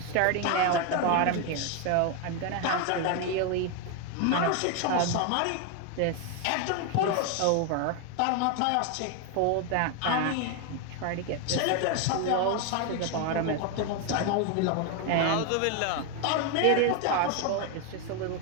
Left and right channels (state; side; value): different; both; correlation 0.01